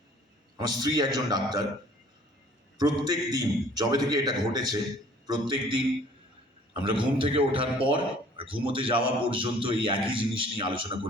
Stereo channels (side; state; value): both; normal; correlation 0.53